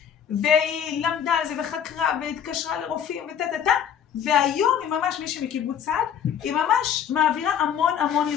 והיא למדה על זה וחקרה והתקשרה לרופאים והיום היא ממש מישהי מקיבוץ צעד, היא ממש מעבירה המון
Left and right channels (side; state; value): right; quieter; 8.7 dB